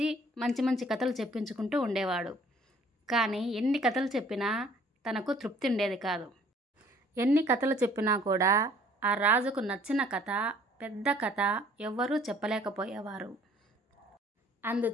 మంచి మంచి కథలు చెప్పించుకుంటూ ఉండేవాడు. కానీ ఎన్ని కథలు చెప్పినా తనకు తృప్తి ఉండేది కాదు. ఎన్ని కథలు చెప్పినా కూడా ఆ రాజుకు నచ్చిన కథ, పెద్ద కథ ఎవ్వరూ చెప్పలేకపోయేవారు.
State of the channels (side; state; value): both; normal; correlation 0.57